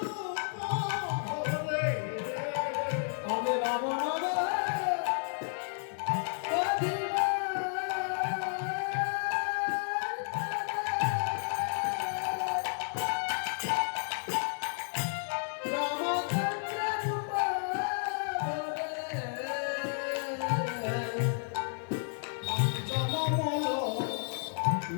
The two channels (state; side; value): silent; right; 56 dB below the other